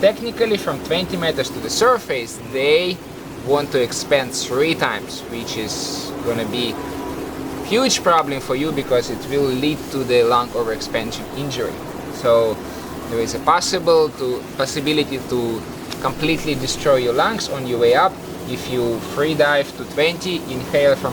technically from 20 meters to the surface, they want to expand 3 times, which is gonna be huge problem for you because it will lead to the lung overexpansion injury. So there is a possibility to completely destroy your lungs on your way up if you free dive to 20, inhale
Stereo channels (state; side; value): identical; both; correlation 1.00